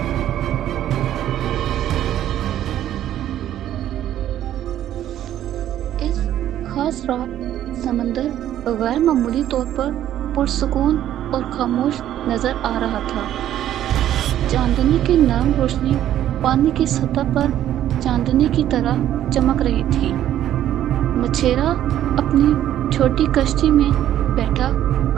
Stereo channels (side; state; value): left; quieter; 11.8 dB